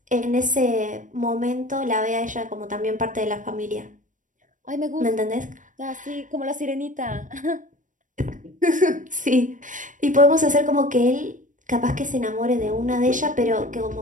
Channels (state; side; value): late; left; 0.37 ms